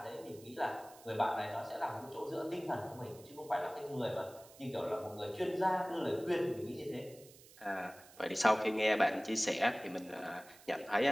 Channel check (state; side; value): noise; right; hiss, 22 dB below the sound